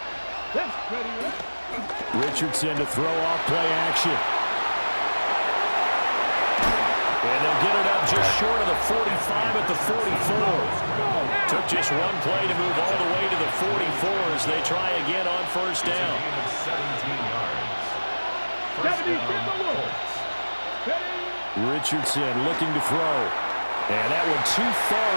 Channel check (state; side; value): inverted; both; correlation -1.00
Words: Richardson to throw off play action. And they'll get it up just short of the 45 at the 44. Took just one play to move all the way to the 44 as they try again on first down. 17 Richardson looking to throw. And that one too